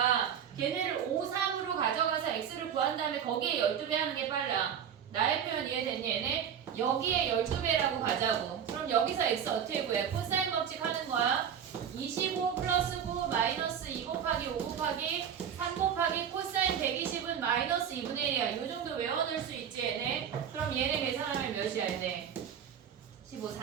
걔네를 5, 3으로 가져가서 x를 구한 다음에 거기에 12배 하는 게 빨라. 나의 표현 이해됐니 얘네? 여기에 12배라고 가자고. 그럼 여기서 x 어떻게 구해? 코사인 법칙 하는 거야. 25 플러스 9 마이너스 2 곱하기 5 곱하기 3 곱하기 코사인 120은 마이너스 2분의 1이야. 이 정도 외워낼 수 있지 얘네? 그럼 얘네 계산하면 몇이야 얘네? 15,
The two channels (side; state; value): left; quieter; 8.4 dB